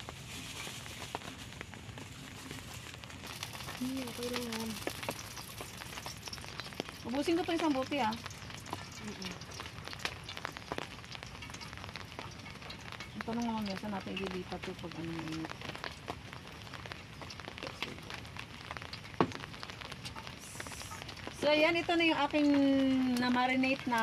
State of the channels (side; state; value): both; identical; correlation 1.00